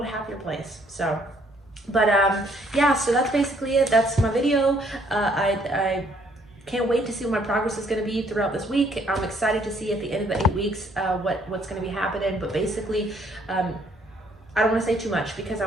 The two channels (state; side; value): normal; both; correlation 0.65